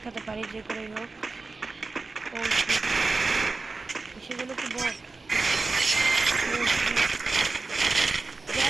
খেতে পারি যে করে হোক সেগুলো কি বল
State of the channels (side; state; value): left; quieter; 3.8 dB